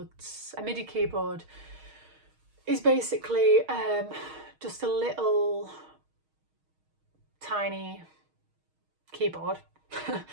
A MIDI keyboard is basically just a little tiny keyboard, a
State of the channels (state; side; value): late; left; 6.4 ms